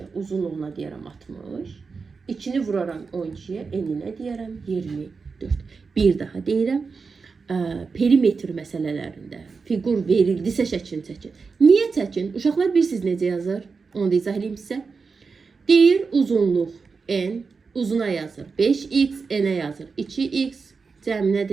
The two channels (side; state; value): left; quieter; 4.8 dB